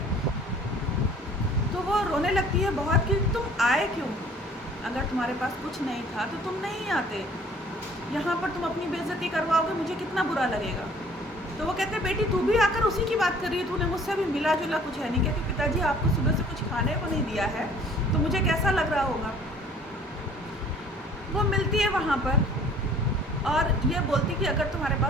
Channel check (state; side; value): normal; both; correlation 0.53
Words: तो वो रोने लगती है बहुत कि तुम आए क्यों, अगर तुम्हारे पास कुछ नहीं था तो तुम नहीं आते, यहाँ पर तुम अपनी बेइज्जती करवाओगे, मुझे कितना बुरा लगेगा। तो वो कहते बेटी तू भी आकर उसी की बात कर रही है, तूने मुझसे भी मिला जुला कुछ है नहीं। कहती पिताजी आपको सुबह से कुछ खाने को नहीं दिया है तो मुझे कैसा लग रहा होगा। वो मिलती है वहाँ पर और ये बोलती कि अगर तुम्हारे